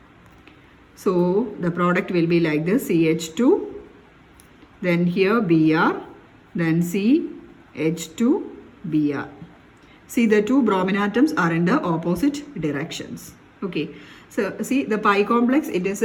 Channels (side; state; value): both; identical; correlation 1.00